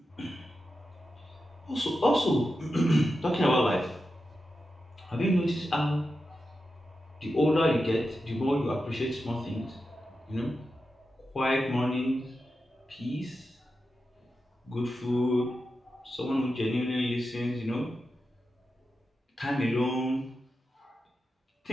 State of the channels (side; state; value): both; normal; correlation 0.90